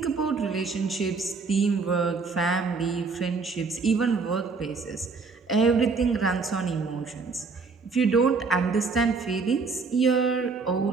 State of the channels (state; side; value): quieter; left; 4.5 dB